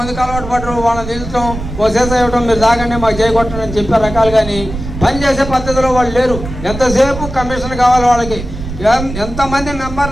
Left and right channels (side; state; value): right; noise; rumble, 9 dB below the sound